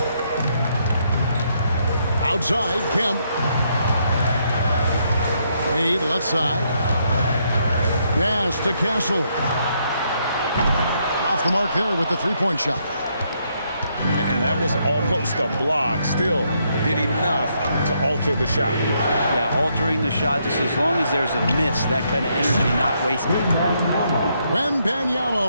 Outside, Kemp. Wade, left side. Pass to Castle. Off the mark there with the three-point shot. And that was almost a block. Still did enough to alter the shot. Yeah, altering the shot just as long as there's a miss, that kind of energy not wasted.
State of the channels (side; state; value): both; inverted; correlation -0.75